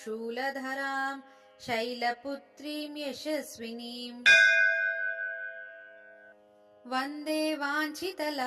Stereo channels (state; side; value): identical; both; correlation 1.00